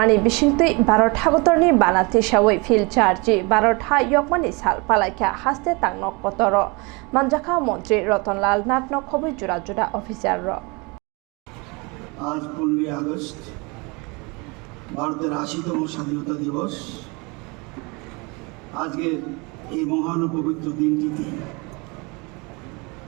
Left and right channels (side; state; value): left; quieter; 28.3 dB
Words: bisingtui Barot hagotorni banati shawai fil charji Barot ha yokmani sal palakya haste tangnok kotoro manjaka মন্ত্রী রতনলাল নাটনক খবর জোড়া জোড়া officer র আজ 15 August ভারতের 80তম স্বাধীনতা দিবস। আজকে এই মহান পবিত্র দিনটিতে